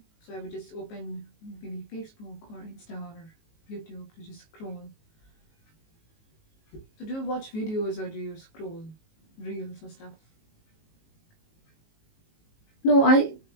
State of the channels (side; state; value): right; late; 19 ms